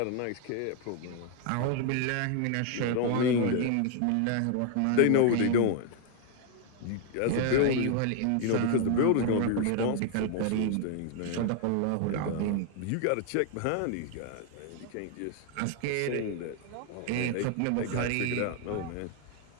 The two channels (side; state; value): both; different; correlation 0.00